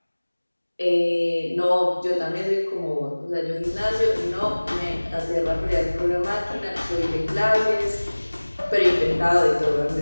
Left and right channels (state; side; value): inverted; both; correlation -1.00